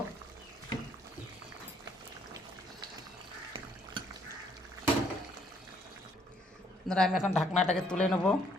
বন্ধুরা, আমি এখন ঢাকনাটাকে তুলে নেব।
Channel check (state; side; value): normal; both; correlation 0.67